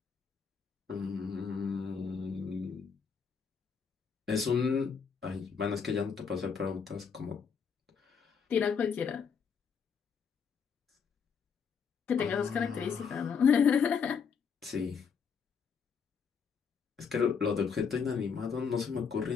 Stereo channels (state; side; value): quieter; right; 6.3 dB